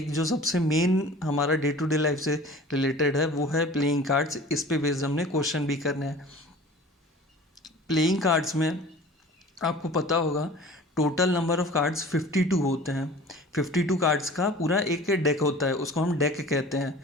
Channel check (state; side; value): normal; both; correlation 0.43